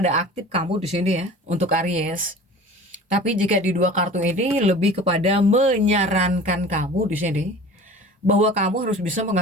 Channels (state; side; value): normal; both; correlation 0.41